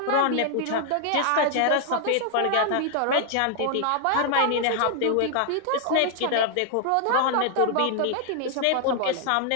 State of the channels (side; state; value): both; different; correlation 0.00